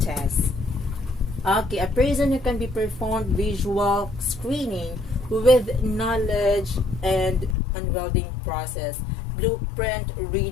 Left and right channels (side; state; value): right; drops out; at 7.6 s